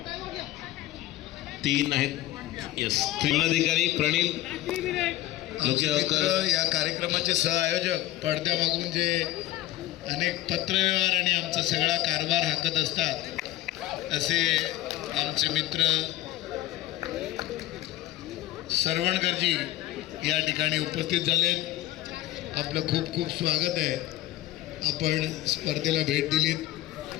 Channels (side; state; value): right; quieter; 15.2 dB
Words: 3 आहेत. यस. जिल्हाधिकारी प्रणील मित्र या कार्यक्रमाचे सहआयोजक पडद्यामागून जे अनेक पत्रव्यवहार आणि आमचा सगळा कारभार हाकत असतात असे आमचे मित्र सरवणकरजी या ठिकाणी उपस्थित झालेत. आपलं खूप खूप स्वागत आहे. आपण स्पर्धेला भेट दिलीत.